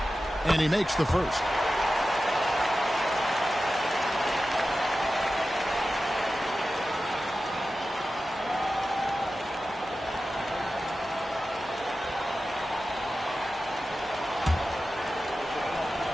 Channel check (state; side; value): normal; both; correlation 0.94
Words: And he makes the first.